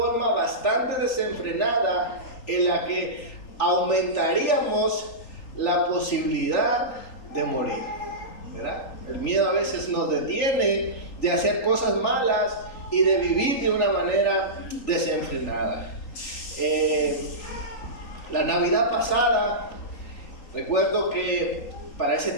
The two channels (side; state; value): right; late; 3.8 ms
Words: bastante desenfrenada, en la que aumentaríamos la posibilidad de morir, ¿verdad? El miedo a veces nos detiene de hacer cosas malas y de vivir de una manera desenfrenada. La Navidad pasada, recuerdo que para ese